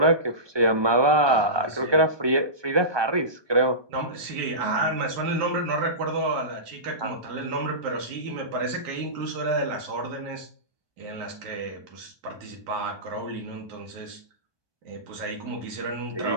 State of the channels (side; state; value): left; late; 1.2 ms